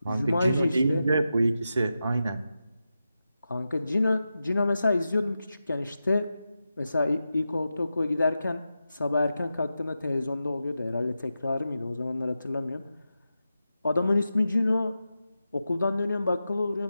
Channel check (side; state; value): both; inverted; correlation -0.90